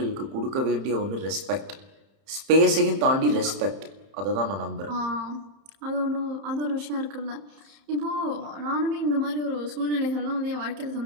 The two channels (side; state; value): left; late; 31 ms